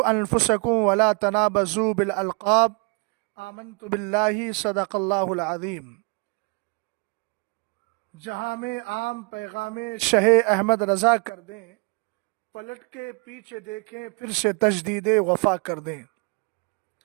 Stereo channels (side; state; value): left; quieter; 34.8 dB